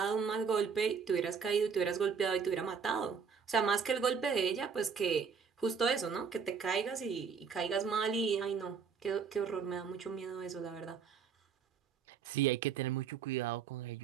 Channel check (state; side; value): quieter; left; 6.2 dB